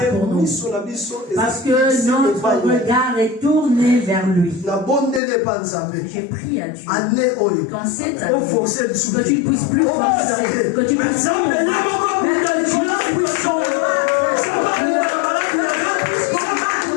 pour nous? Parce que notre regard est tourné vers lui. J'ai prié à Dieu qu'en cette année, que tu ne puisses plus forcer, que tu puisses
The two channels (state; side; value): drops out; right; at 5.2 s